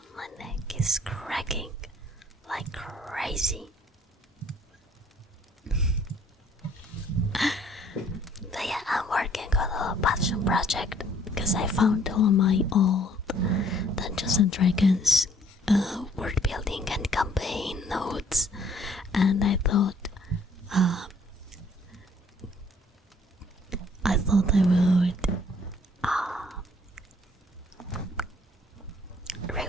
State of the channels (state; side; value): normal; both; correlation 0.61